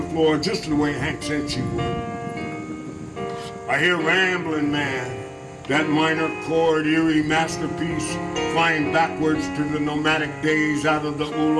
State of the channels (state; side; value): identical; both; correlation 1.00